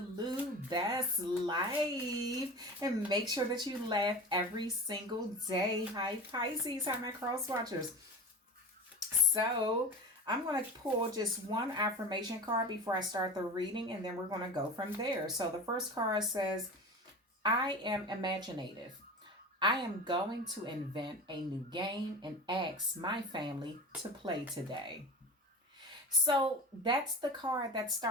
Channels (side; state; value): both; normal; correlation 0.31